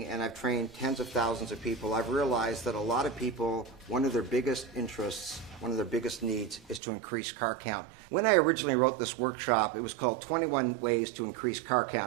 and I've trained tens of thousands of people, I've realized that a lot of people, one of their biggest interests, one of their biggest needs is to increase car count. When I originally wrote this workshop, it was called 21 Ways to Increase Car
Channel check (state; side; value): drops out; left; at 6.8 s